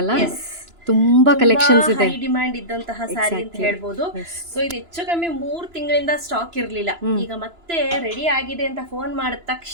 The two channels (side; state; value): left; late; 2.9 ms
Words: ಅಲ್ಲ? ಎಸ್, ತುಂಬಾ ತುಂಬಾ ಕಲೆಕ್ಷನ್ಸ್ ಹೈ ಇದೆ. ಡಿಮ್ಯಾಂಡ್ ಇದ್ದಂತಹ ಸ್ಯಾರಿ ಅಂತ ಎಕ್ಸಾಕ್ಟ್ಲಿ. ಹೇಳ್ಬೋದು. ಎಸ್. ಸೊ ಇದು ಹೆಚ್ಚು ಕಮ್ಮಿ 3 ತಿಂಗಳಿಂದ ಸ್ಟಾಕ್ ಇರ್ಲಿಲ್ಲ. ಈಗ ಮತ್ತೆ ರೆಡಿ ಆಗಿದೆ ಅಂತ ಫೋನ್ ಮಾಡಿದ